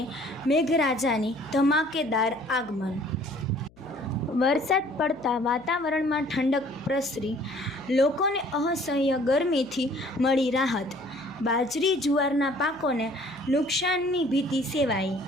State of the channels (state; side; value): noise; left; hum, 28 dB below the sound